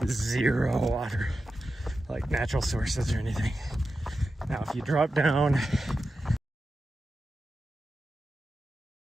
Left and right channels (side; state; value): both; normal; correlation 0.91